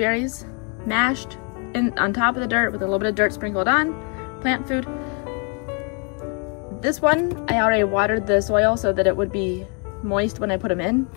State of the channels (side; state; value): right; quieter; 36.0 dB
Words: mashed on top of the dirt with a little bit of dirt sprinkled on, plant food. This one, I already watered the soil so that it would be moist when I put them in.